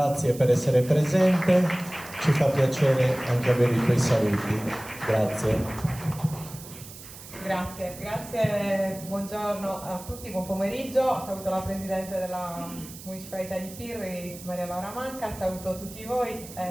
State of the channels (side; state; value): right; noise; hiss, 16 dB below the sound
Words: per essere presente, ci fa piacere anche avere i tuoi saluti, grazie. Grazie, buongiorno a tutti, buon pomeriggio, saluto la Presidente della Municipalità di Pirri, Maria Laura Manca, saluto tutti voi